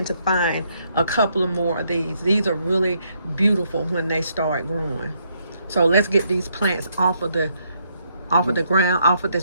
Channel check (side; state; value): both; inverted; correlation -0.74